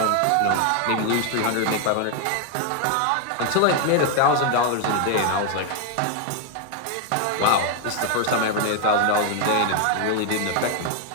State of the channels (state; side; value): different; both; correlation 0.00